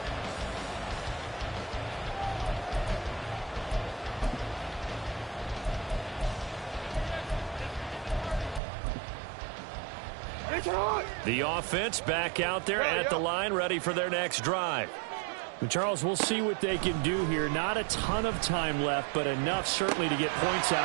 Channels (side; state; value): left; drops out; at 8.6 s